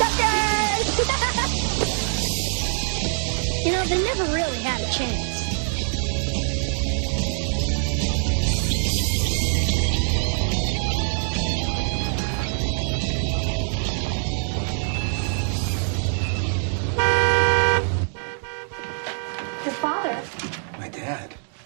You know, they never really had a chance. Your father. My dad?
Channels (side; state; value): left; silent; 55 dB below the other